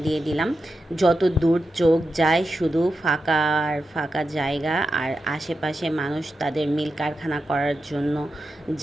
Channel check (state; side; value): normal; both; correlation 0.90